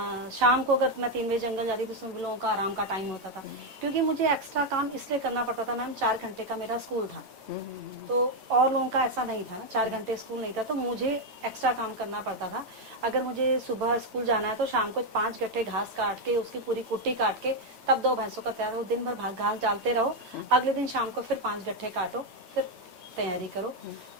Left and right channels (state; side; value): late; left; 9.0 ms